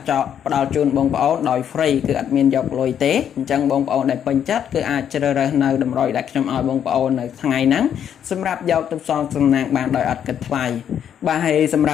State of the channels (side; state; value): right; quieter; 9.1 dB